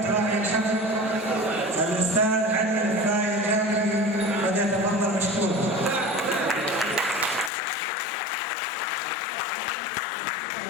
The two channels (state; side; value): drops out; right; at 7.5 s